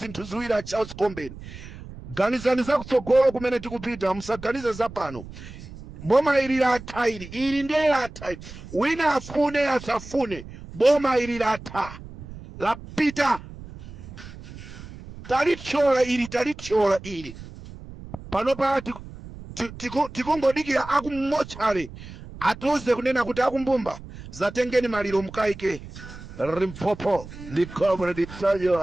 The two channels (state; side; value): noise; right; rumble, 15 dB below the sound